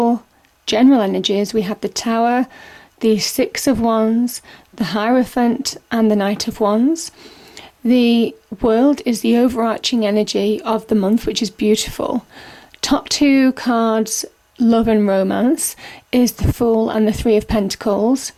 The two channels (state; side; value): identical; both; correlation 1.00